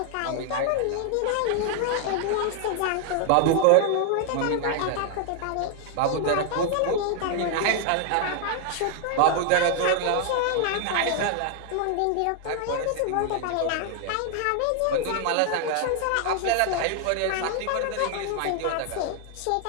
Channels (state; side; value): different; both; correlation 0.00